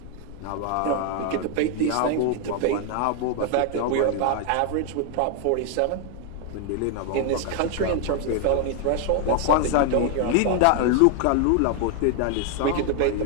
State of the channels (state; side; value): different; both; correlation 0.00